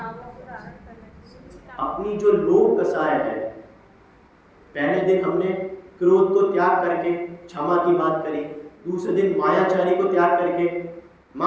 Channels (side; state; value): both; identical; correlation 1.00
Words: अपनी जो लोभ कसाय है। पहले दिन हमने क्रोध को त्याग करके क्षमा की बात करी, दूसरे दिन मायाचारी को त्याग करके,